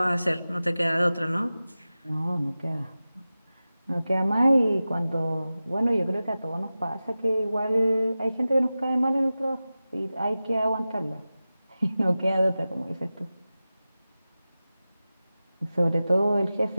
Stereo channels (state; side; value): inverted; both; correlation -0.95